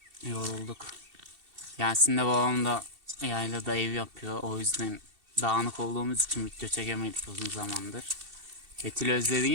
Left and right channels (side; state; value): left; late; 2.7 ms